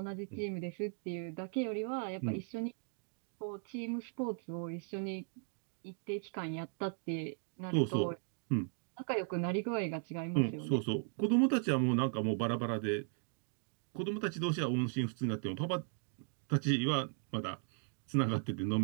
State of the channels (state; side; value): silent; left; 53 dB below the other